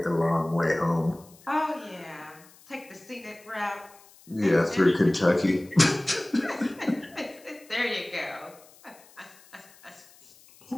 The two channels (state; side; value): noise; left; hiss, 25 dB below the sound